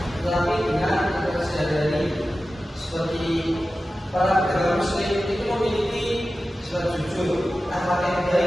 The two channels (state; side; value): normal; both; correlation 0.94